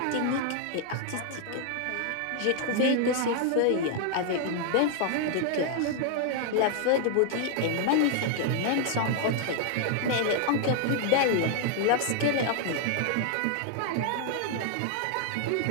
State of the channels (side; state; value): both; different; correlation 0.00